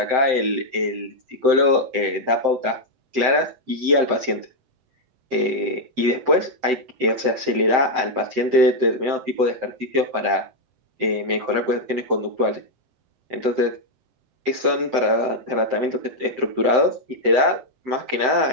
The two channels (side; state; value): left; late; 7.8 ms